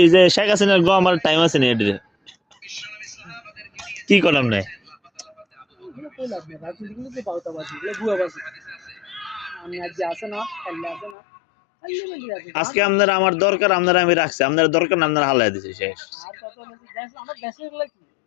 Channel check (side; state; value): right; drops out; at 11.2 s